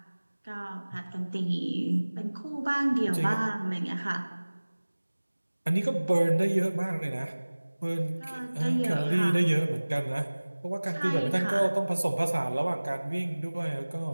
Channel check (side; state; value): both; inverted; correlation -1.00